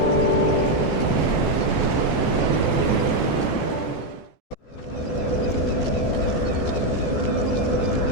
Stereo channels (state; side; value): late; right; 14 ms